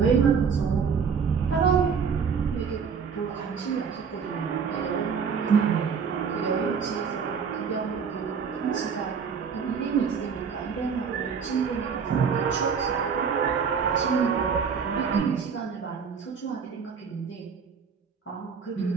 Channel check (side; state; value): left; quieter; 6.2 dB